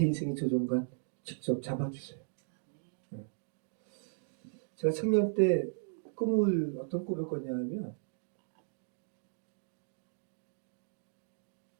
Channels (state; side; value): silent; left; digital silence